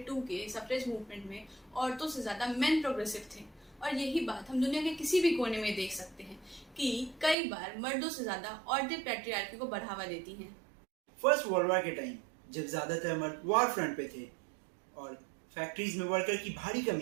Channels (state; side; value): drops out; left; at 7.4 s